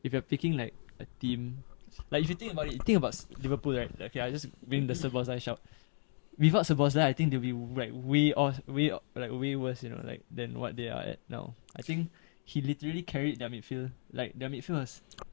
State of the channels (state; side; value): silent; right; 55 dB below the other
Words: if you're picking like a team, like if you think about it, think about Liverpool, right? Okay, I just bring the Szoboszlai shout. Without Szoboszlai, I think they'll be like way worse, than what they are at now. I think he literally carried their midfield. Like their midfield was